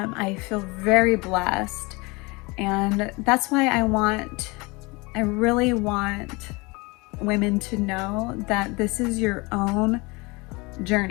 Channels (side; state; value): right; quieter; 25.9 dB